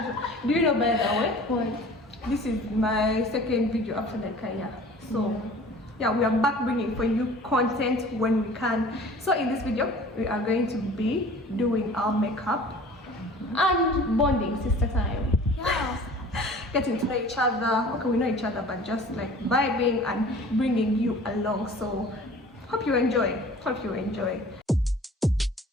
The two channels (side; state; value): both; normal; correlation 0.46